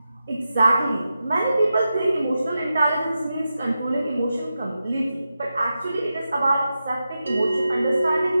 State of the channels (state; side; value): inverted; both; correlation -0.90